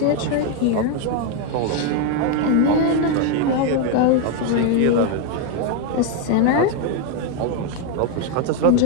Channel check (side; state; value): both; different; correlation 0.01